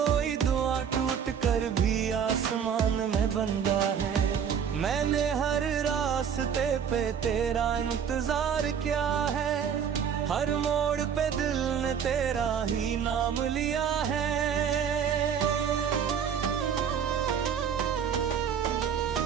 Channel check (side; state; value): left; quieter; 7.7 dB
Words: दुआ टूट कर भी आसमान में बंदा है। मैंने हर रास्ते पे तेरा इंतजार किया है, हर मोड़ पे दिल ने तेरा ही नाम लिया है।